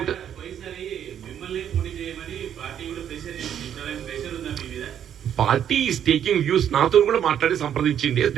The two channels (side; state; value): left; quieter; 9.5 dB